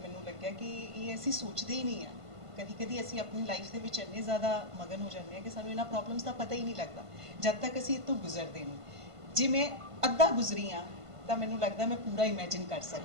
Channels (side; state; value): left; late; 1.5 ms